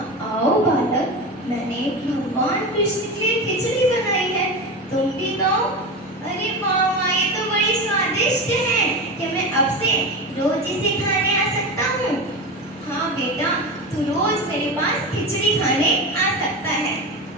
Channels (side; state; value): both; normal; correlation 0.23